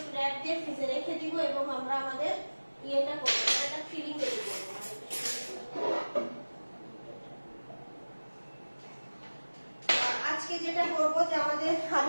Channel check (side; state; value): both; inverted; correlation -1.00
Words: র্যাপ দিয়ে ফ্রিজে রেখে দিব এবং আমরা আমাদের ইয়েটা করব, একটা ফিলিং রেডি করব। আজকে যেটা করব যে আমাদের,